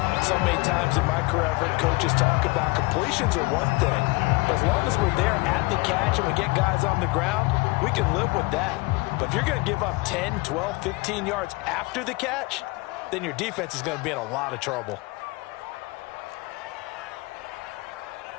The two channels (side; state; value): right; quieter; 24.7 dB